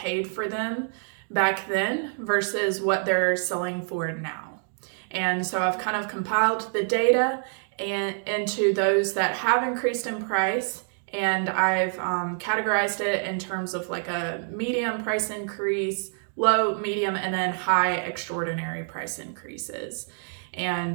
for them back then versus what they're selling for now. And so I've kind of compiled the data into those that have increased in price, and I've categorized it in terms of like a medium price increase, low, medium, and then high extraordinary price increases.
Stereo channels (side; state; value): left; silent; 60 dB below the other